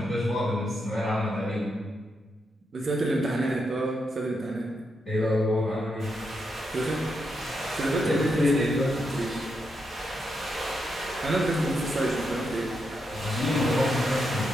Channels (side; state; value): both; normal; correlation 0.83